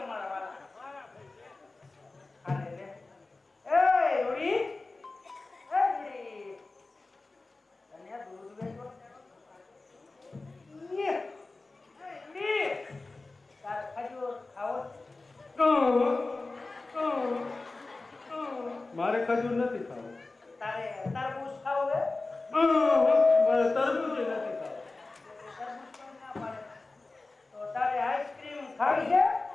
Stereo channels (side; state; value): right; quieter; 3.4 dB